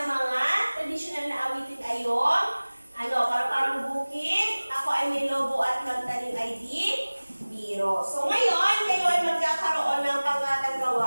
mga tradisyonal na awitin ay yung Parang bukid. Ako ay may lobo at magtanim ay di biro. So ngayon, kayo ay magkakaroon ng pangatang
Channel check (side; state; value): both; inverted; correlation -1.00